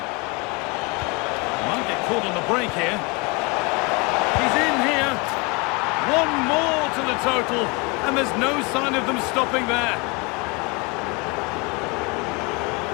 Might get caught on the break here. He's in here. One more to the total, and there's no sign of them stopping there.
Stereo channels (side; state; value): right; quieter; 27.9 dB